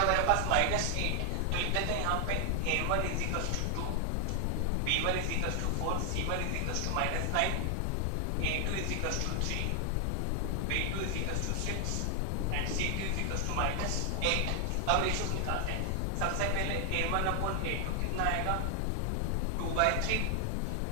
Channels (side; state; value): both; different; correlation 0.00